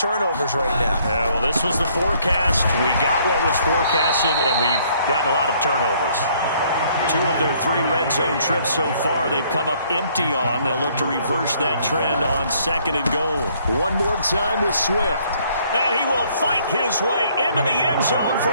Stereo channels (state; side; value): inverted; both; correlation -0.64